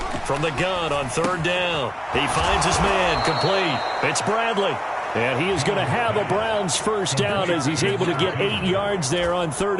from the gun on 3rd down. He finds his man, complete. It's Bradley. And he is going to have a Browns first down as he's able to get 8 yards there on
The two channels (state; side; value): identical; both; correlation 1.00